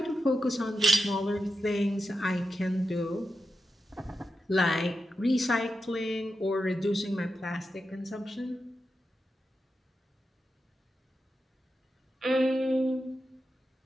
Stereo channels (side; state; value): both; normal; correlation 0.88